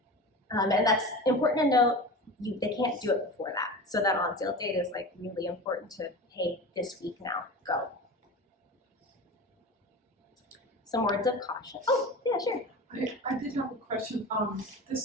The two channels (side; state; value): both; normal; correlation 0.31